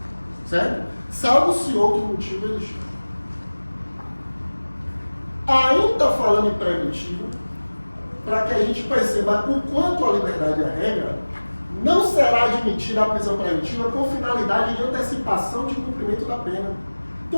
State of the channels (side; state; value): both; inverted; correlation -1.00